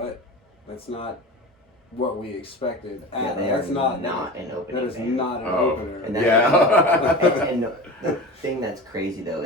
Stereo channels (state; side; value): normal; both; correlation 0.32